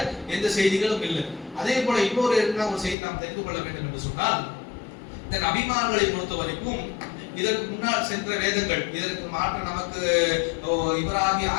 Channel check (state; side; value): drops out; right; at 3.0 s